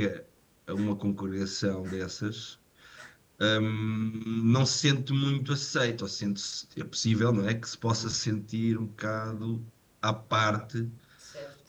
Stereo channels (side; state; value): both; identical; correlation 1.00